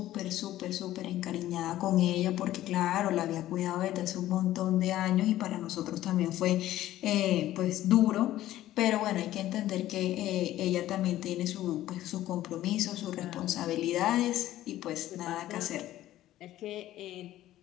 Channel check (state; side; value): quieter; right; 14.1 dB